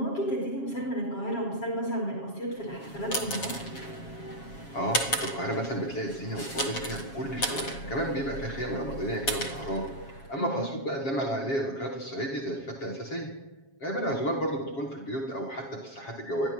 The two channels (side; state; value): right; late; 7.3 ms